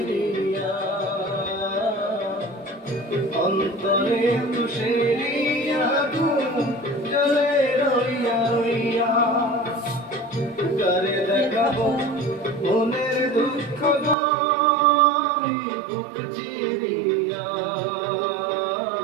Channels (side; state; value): left; drops out; at 14.2 s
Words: অন্তরে তুষেরিয়া জলে রইয়া রইয়া করে দেখাবো মনের দুঃখ গরি বুক চিরিয়া